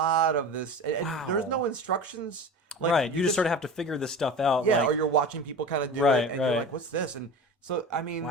of this. And Wow. there was no instructions. Like, right. You just sort of have to figure this stuff out. Yeah. Like, or you're watching people kind of do Right, it, and right. you're like, "What's this?" And so I mean,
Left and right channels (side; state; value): both; normal; correlation 0.33